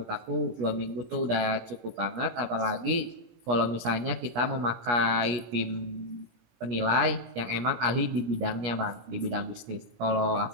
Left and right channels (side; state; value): left; late; 17 ms